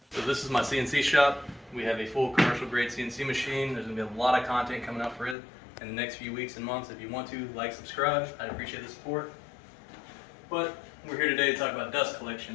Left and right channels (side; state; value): right; drops out; at 5.4 s